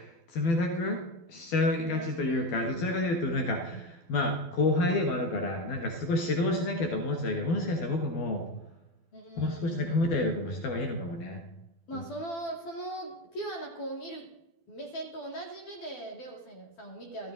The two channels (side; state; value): right; late; 12 ms